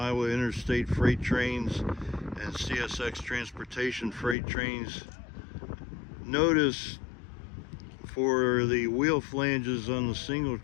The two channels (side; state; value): right; drops out; at 4.4 s